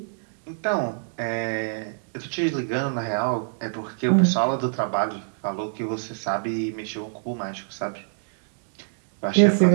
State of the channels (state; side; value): silent; left; digital silence